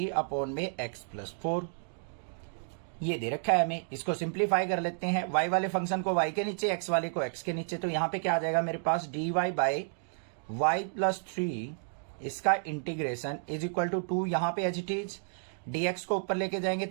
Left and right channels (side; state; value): left; silent; digital silence